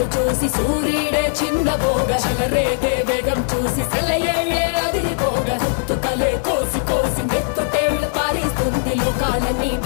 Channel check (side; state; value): right; silent; digital silence